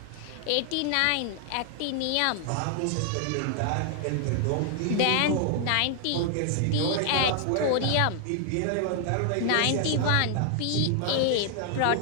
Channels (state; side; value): different; both; correlation 0.00